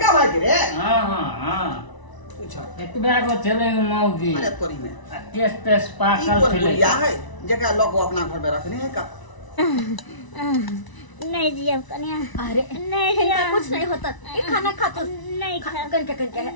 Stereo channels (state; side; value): late; right; 1.0 ms